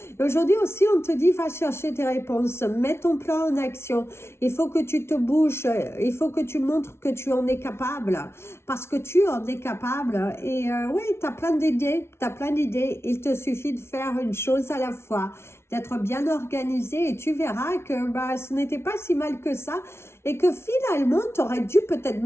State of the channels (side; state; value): right; late; 0.12 ms